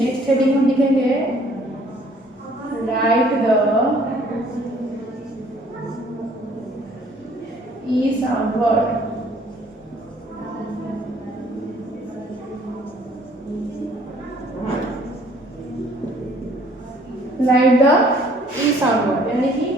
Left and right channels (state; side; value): normal; both; correlation 0.59